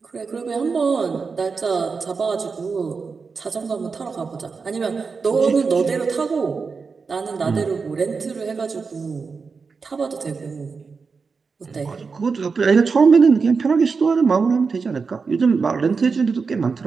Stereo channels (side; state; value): left; quieter; 4.9 dB